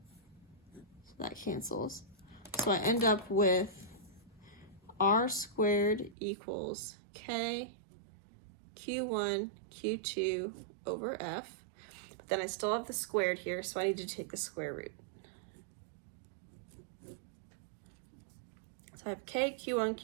So that cancels. So I end up with R squared equals K Q1, Q2 over F. But then I still have the squared here, so I need to take the square root. So I have K, Q1,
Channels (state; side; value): drops out; left; at 6.2 s